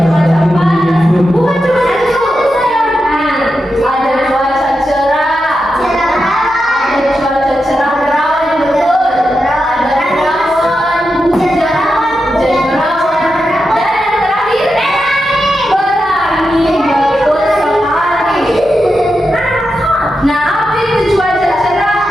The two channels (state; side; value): normal; both; correlation 0.88